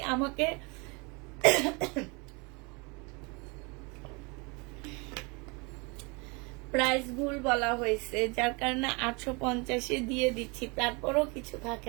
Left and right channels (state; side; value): quieter; left; 29.5 dB